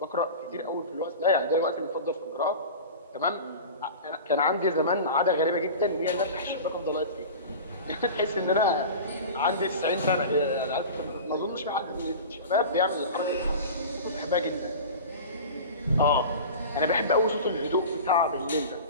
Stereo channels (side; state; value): both; inverted; correlation -0.34